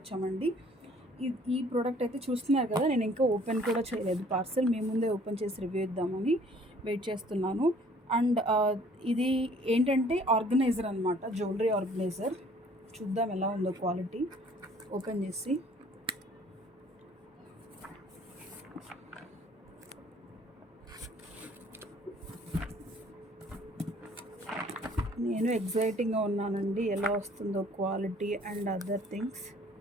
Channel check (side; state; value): both; normal; correlation 0.56